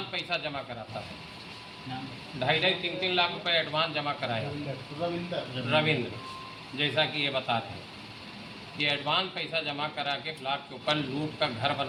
पैसा जमा कराता है, 2.5-3 लाख रुपए एडवांस जमा कराया रविंद्र, जैसा कि ये बता रहे हैं। ये एडवांस पैसा जमा करा के ब्लॉक के ऊपर लूट का घर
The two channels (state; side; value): identical; both; correlation 1.00